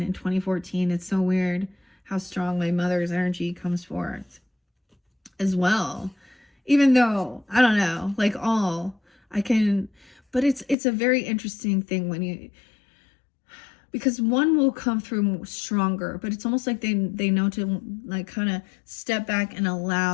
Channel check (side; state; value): right; drops out; at 10.8 s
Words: and 2014, it's so weird how strong my mother's energy comes forth as well. Even though, I don't know, like all I can, but it's a very interesting thing when you, because one will come through stronger, but it's almost like they know to like kind of step back and